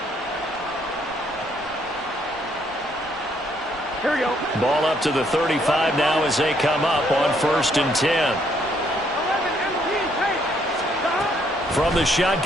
Here we go. Ball up to the 35 now as they come up on 1st and 10. From the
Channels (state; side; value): normal; both; correlation 0.69